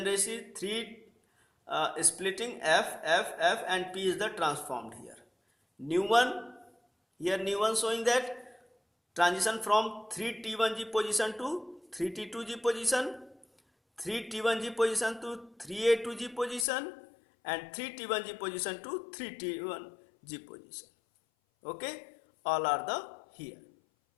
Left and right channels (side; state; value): right; drops out; at 16.7 s